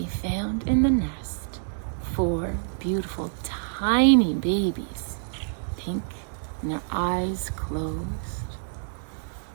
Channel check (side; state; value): left; silent; digital silence